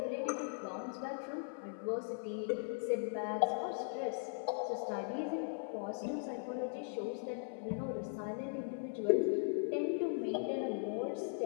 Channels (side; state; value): right; silent; 52 dB below the other